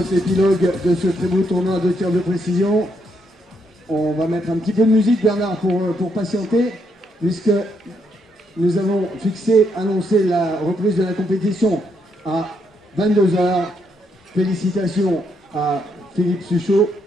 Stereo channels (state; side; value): normal; both; correlation 0.76